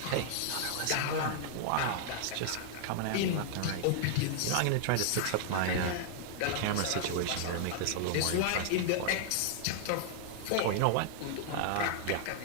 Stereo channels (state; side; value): different; both; correlation -0.01